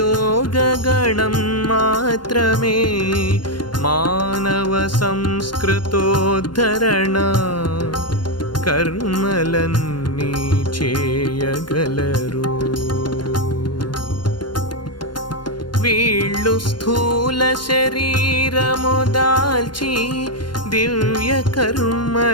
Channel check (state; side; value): late; right; 0.72 ms